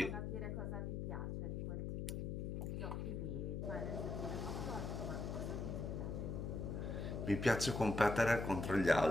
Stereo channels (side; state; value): left; noise; hum, 3 dB below the sound